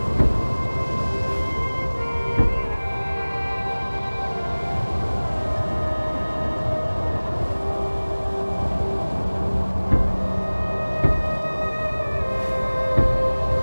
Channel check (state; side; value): inverted; both; correlation -1.00